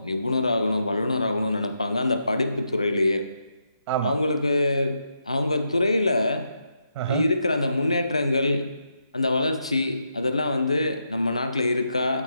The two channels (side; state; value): both; inverted; correlation -0.82